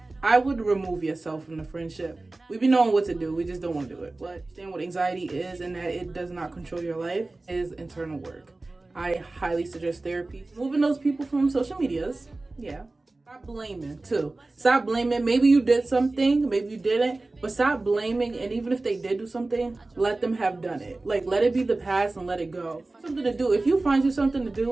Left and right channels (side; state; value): left; quieter; 3.1 dB